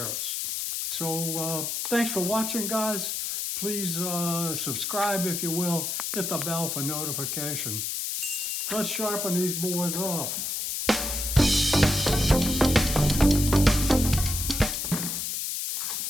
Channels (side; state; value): left; noise; hiss, 2 dB below the sound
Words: So thanks for watching, guys. Please subscribe if you will. Hit the bell for notification. Let's sharpen these boys up.